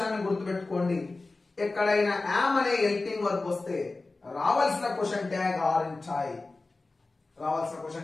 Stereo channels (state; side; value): quieter; right; 3.4 dB